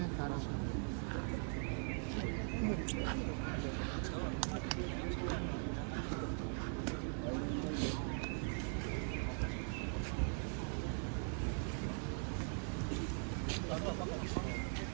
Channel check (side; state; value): left; silent; 50 dB below the other